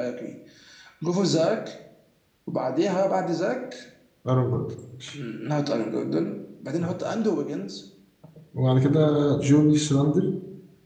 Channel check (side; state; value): both; identical; correlation 1.00